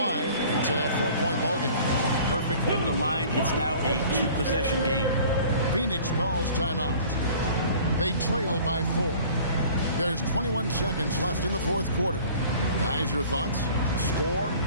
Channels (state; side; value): inverted; both; correlation -0.48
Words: It's a 4-point ballgame. Perfect from the line. It's now a 2-possession game. Phoenix calls timeout. They trail by 4. There's 21 seconds left in the fourth quarter. Guys, your thoughts? Score,